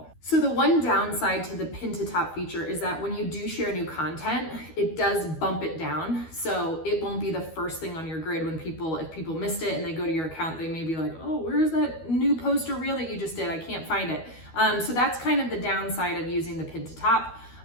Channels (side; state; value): right; late; 12 ms